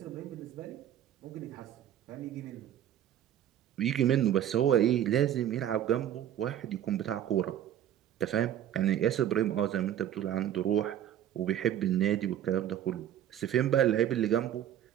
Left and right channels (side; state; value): left; quieter; 10.9 dB